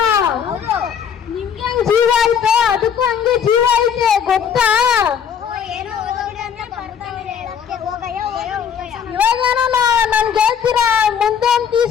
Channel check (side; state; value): right; quieter; 7.8 dB